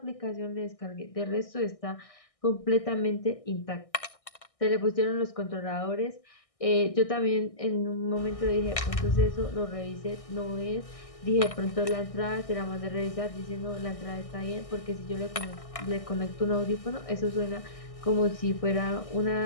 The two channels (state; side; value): late; right; 1.6 ms